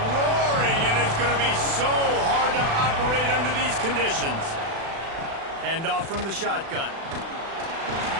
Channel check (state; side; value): late; left; 36 ms